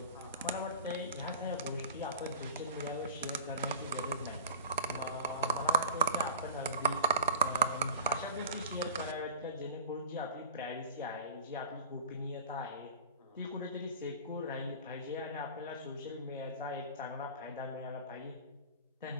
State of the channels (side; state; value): both; inverted; correlation -0.37